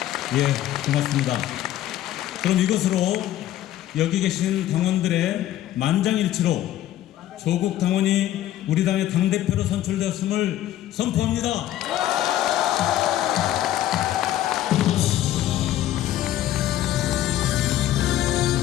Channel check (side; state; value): right; quieter; 13.1 dB